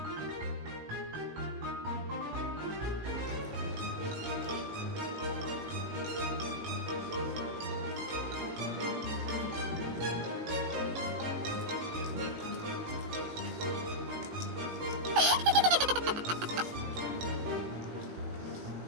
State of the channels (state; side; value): late; left; 19 ms